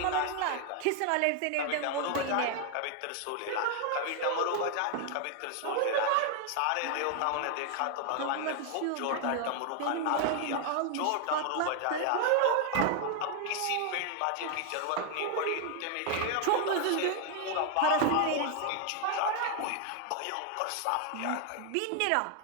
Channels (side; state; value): both; different; correlation 0.00